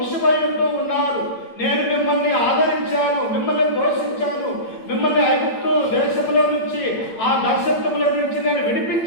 ఉంటూ ఉన్నారు, నేను మిమ్మల్ని ఆదరించాను, మిమ్మల్ని పోషించాను, మిమ్మల్ని ఐగుప్తు దేశంలో నుంచి, ఆ దాస్యత్వంలో నుంచి నేను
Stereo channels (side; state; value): right; late; 8.8 ms